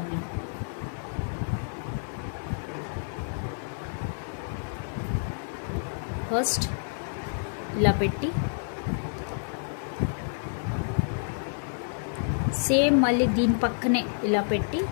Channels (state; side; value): silent; right; 59 dB below the other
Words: నేను. ఫస్ట్ ఇలా పెట్టి సేమ్ మళ్ళీ దీని పక్కనే ఇలా పెట్టి